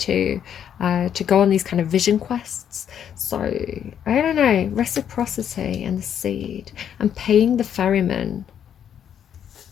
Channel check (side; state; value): right; quieter; 9.0 dB